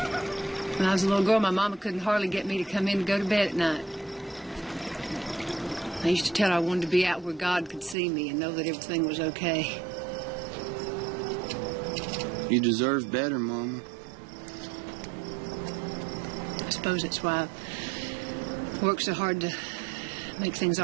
When I was a little girl, my mama couldn't hardly get me to come in to go to bed at night. I used to tell her I wanted to be out where God could see me and know that everything was okay. You deserve better, Mama. I suppose that's why I work so hard to make things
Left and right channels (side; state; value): left; drops out; at 8.0 s